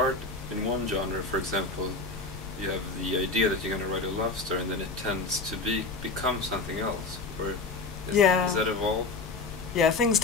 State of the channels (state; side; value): quieter; right; 3.7 dB